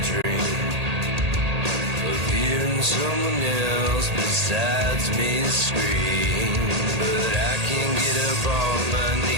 dream of hearing someone else besides me scream. But I can't get up on my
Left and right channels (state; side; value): late; left; 1.8 ms